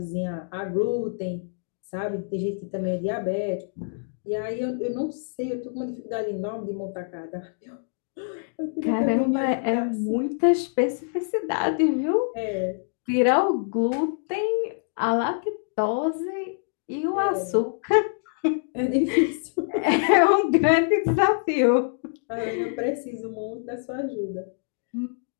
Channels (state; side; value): silent; right; digital silence